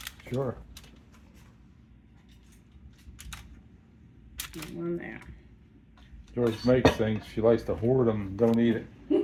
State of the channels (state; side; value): identical; both; correlation 1.00